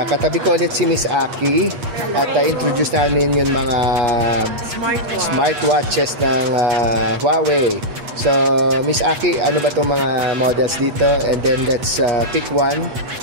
katabi ko ulit si Miss Aki at introduce namin yung mga smartwatches ng Huawei. So, Miss Aki, ano ba itong mga models dito? And then let's pick one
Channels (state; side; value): late; left; 8.3 ms